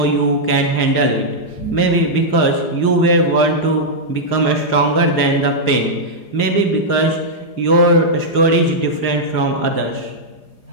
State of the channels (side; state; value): right; late; 4.9 ms